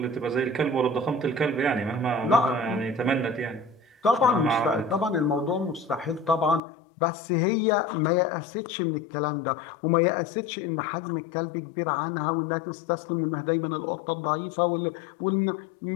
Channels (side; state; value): right; drops out; at 6.6 s